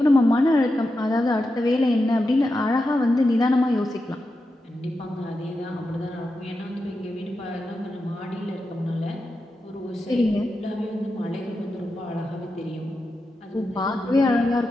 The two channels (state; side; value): normal; both; correlation 0.89